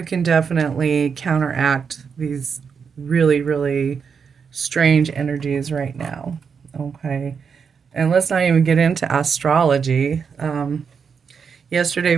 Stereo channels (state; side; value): quieter; left; 6.3 dB